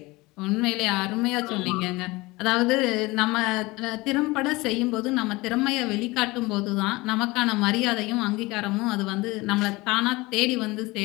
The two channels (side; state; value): right; quieter; 22.1 dB